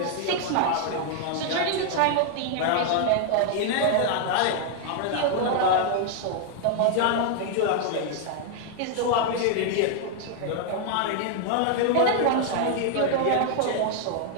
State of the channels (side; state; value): both; different; correlation 0.00